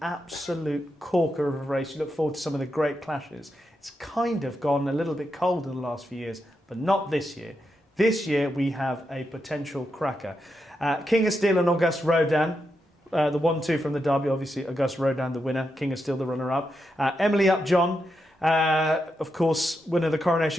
absolute corker of a race. You look forward to some of the great clashes. It's kind of gone a little bit cold in the last few years, but not this year. This year we have a potential cracker. King of Steel and Auguste Rodin, the 1-2 from the Derby, obviously Auguste Rodin the winner, King of Steel the runner-up. Emily Upjohn, of course, winner of the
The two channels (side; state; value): both; normal; correlation 0.85